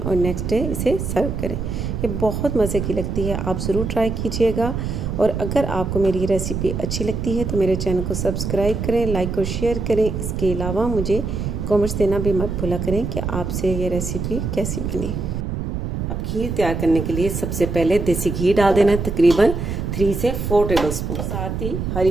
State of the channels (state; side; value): noise; right; rumble, 3 dB below the sound